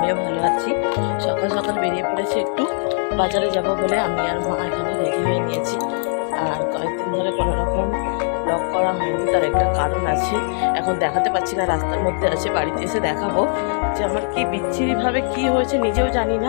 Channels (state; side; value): silent; right; digital silence